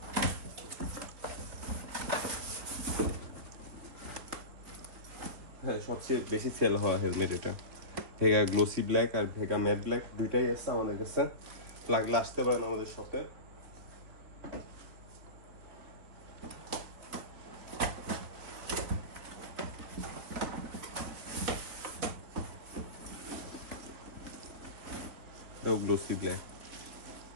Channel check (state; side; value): late; left; 3.6 ms